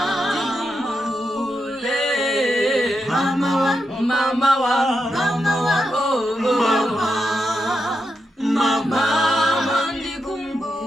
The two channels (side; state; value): both; normal; correlation 0.86